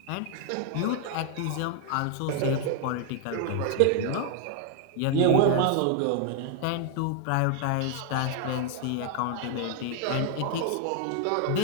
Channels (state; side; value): different; both; correlation 0.00